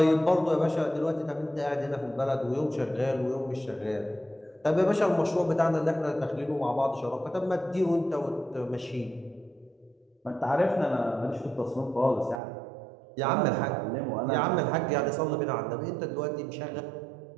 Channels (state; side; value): drops out; left; at 12.4 s